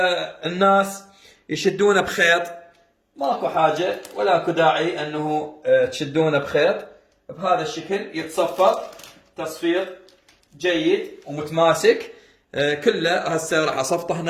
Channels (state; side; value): identical; both; correlation 1.00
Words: الناس يشدونه بخيط، ماكو حاجه ولا اكو داعي انه تشدونه بخيط. بهذا الشكل يتصفط تصفيط جيد ومتماسك كله. هسه راح اصفطه